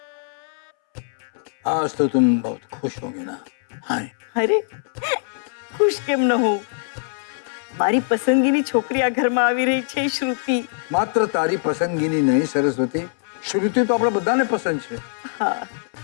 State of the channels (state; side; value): silent; right; 63 dB below the other